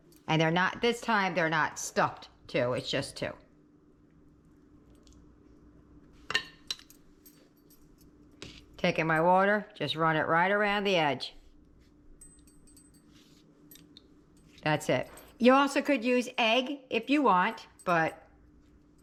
And they're not, this time they're not stuffed 2, it's just 2. Taking my water, just run it right around the edge. That's it. You also could use egg if you want, but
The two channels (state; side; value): identical; both; correlation 1.00